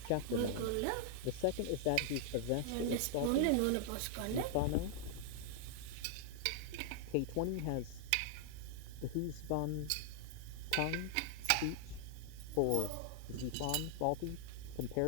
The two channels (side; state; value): both; different; correlation -0.01